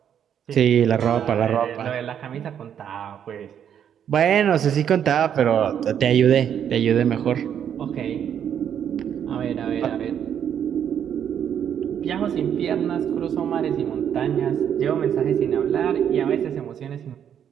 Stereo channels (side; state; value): left; quieter; 8.9 dB